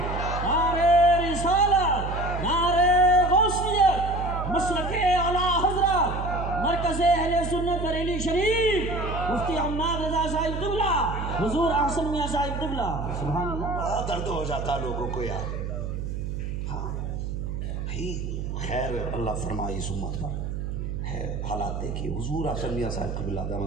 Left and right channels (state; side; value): noise; right; hum, 4 dB below the sound